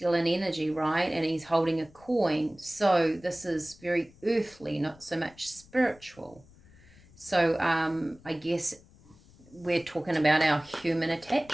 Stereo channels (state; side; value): noise; left; rumble, 26 dB below the sound